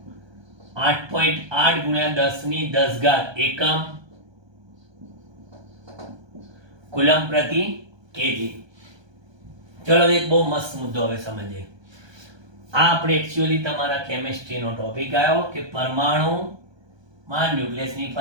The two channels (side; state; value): left; late; 1.2 ms